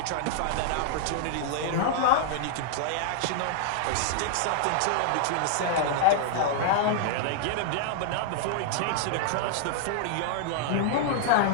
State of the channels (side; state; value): both; different; correlation -0.01